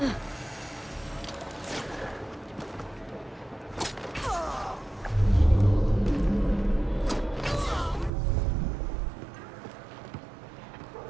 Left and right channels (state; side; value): drops out; left; at 8.1 s